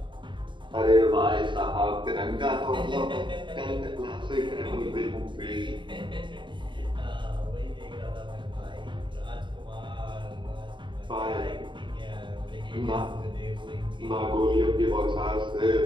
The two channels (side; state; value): left; late; 0.23 ms